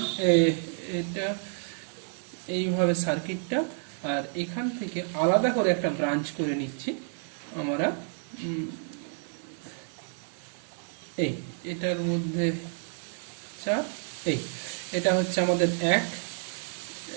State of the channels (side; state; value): left; silent; 58 dB below the other